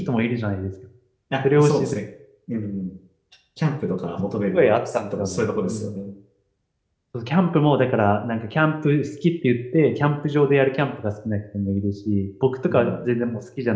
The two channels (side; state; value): both; identical; correlation 1.00